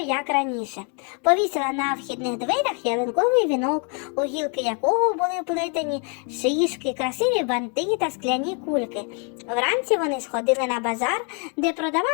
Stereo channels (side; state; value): right; quieter; 38.1 dB